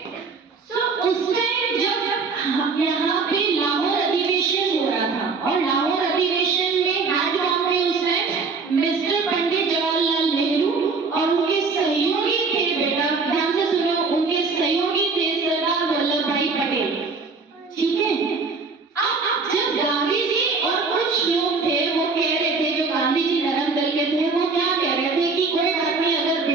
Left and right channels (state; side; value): quieter; left; 4.4 dB